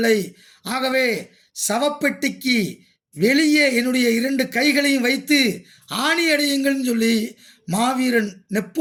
ஆகவே சவப்பெட்டிக்கு வெளியே என்னுடைய 2 கைகளையும் வைத்து ஆணி அடையுங்கள்னு சொல்லி மாவீரன்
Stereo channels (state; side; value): identical; both; correlation 1.00